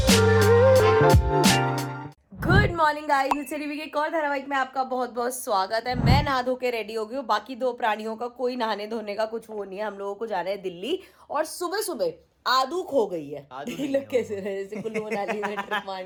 गुड मॉर्निंग गाइस, इस टीवी के एक और धारावाहिक में आपका बहुत बहुत स्वागत है। मैं नहा धो के रेडी हो गई हूँ। बाकी दो प्राणियों का कोई नहाने धोने का कुछ वो नहीं है। हम लोगों को जाना है दिल्ली, और सुबह सुबह आदू खो गई है। लोग कैसे रहे, जैसे कुल्लू मनाली में ट्रिप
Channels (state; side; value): identical; both; correlation 1.00